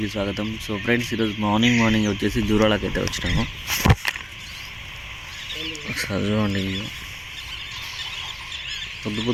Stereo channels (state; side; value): identical; both; correlation 1.00